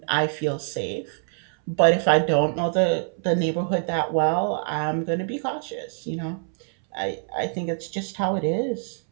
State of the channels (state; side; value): silent; left; 62 dB below the other